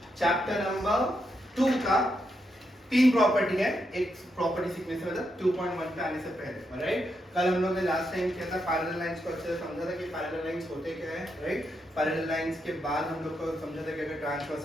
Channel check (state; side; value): normal; both; correlation 0.82